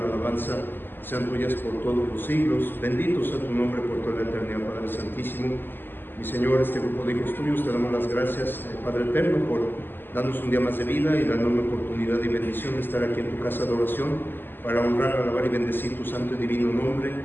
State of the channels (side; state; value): right; late; 0.095 ms